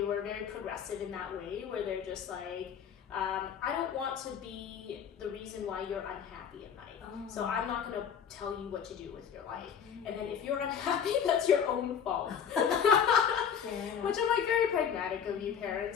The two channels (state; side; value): quieter; right; 7.7 dB